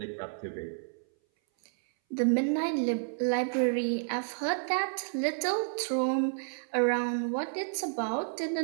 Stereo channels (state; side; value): silent; left; 57 dB below the other